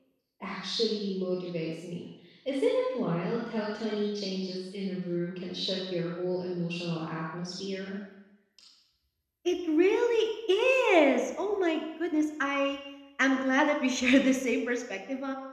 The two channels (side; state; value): both; identical; correlation 1.00